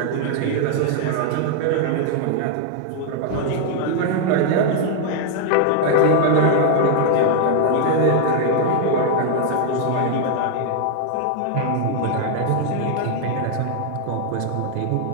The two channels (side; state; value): both; different; correlation 0.00